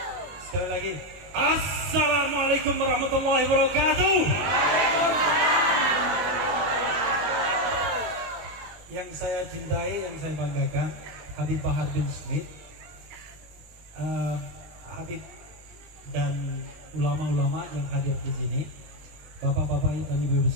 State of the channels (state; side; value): late; left; 20 ms